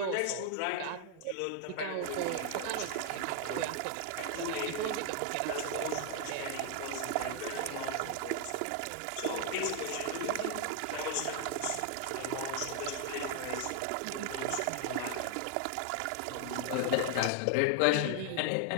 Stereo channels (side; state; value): both; different; correlation 0.00